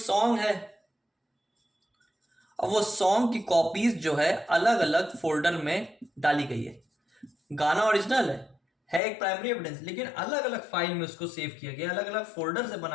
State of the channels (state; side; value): drops out; right; at 9.0 s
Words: है, अब वो सॉन्ग की कॉपीज जो है अलग अलग फोल्डर में डाली गई है। गाना ओरिजिनल है एक प्राइमरी एविडेंस, लेकिन अलग अलग फाइल में उसको सेव किया गया, अलग अलग फोल्डर से